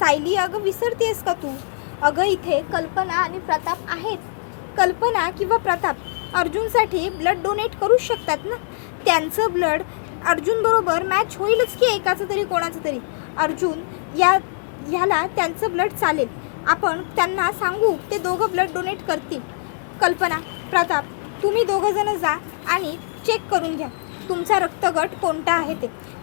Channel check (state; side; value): silent; right; digital silence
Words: अगं विसरतेस का तू? अगं इथे कल्पना आणि प्रताप आहेत. कल्पना किंवा प्रताप अर्जुनसाठी ब्लड डोनेट करूच शकतात ना. त्यांचं ब्लड अर्जुनबरोबर मॅच होईलच की एकाचं तरी कोणाचं तरी. अर्जुन ह्याला त्यांचं ब्लड चालेल. आपण त्यांना सांगू, ते दोघं ब्लड डोनेट करतील. कल्पना, प्रताप, तुम्ही दोघंजणं जा आणि चेक करून घ्या तुमचा रक्तगट कोणता आहे ते.